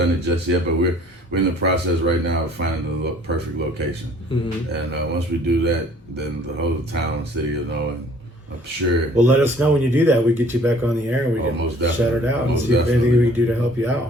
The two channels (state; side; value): normal; both; correlation 0.55